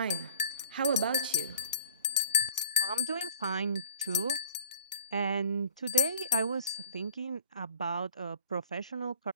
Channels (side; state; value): both; inverted; correlation -0.49